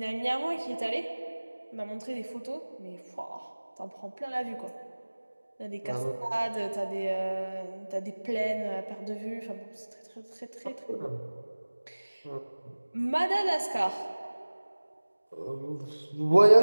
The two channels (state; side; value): inverted; both; correlation -1.00